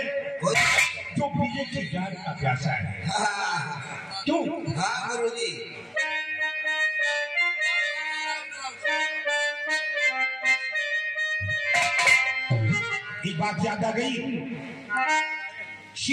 जो बीजे की जान का प्यासा है। क्यों? हाँ गुरुजी। एक बात याद आ गई,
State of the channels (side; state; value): both; identical; correlation 1.00